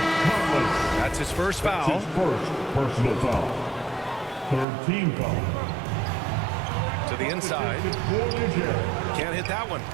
his first foul. That's his first personal foul. Third team foul. To the inside. Can't hit that one.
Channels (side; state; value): left; drops out; at 4.7 s